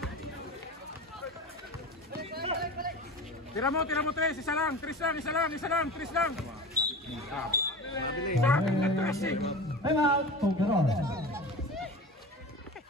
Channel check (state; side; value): normal; both; correlation 0.31